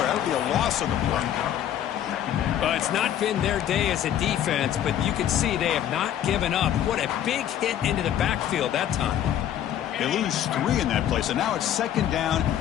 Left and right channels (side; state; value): right; quieter; 10.8 dB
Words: That'll be a loss on the play. It's not been their day as a defense, but you can see they have not given up. What a big hit into the backfield that time. They lose 3 in that play, so now it's 2nd down